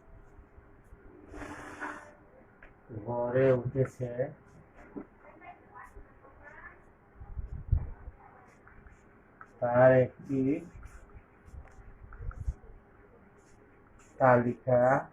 গড়ে উঠেছে তার একটি তালিকা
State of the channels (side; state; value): both; identical; correlation 1.00